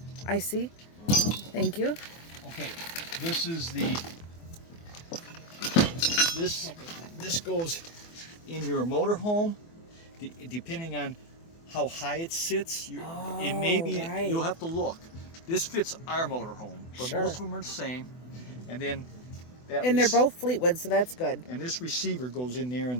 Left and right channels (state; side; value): late; right; 24 ms